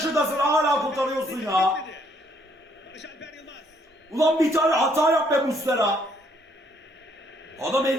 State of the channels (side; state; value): both; normal; correlation 0.67